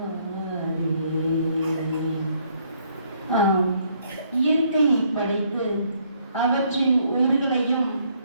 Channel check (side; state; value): both; inverted; correlation -0.68